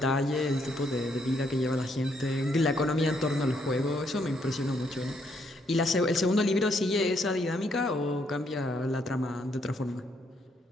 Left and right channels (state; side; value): normal; both; correlation 0.73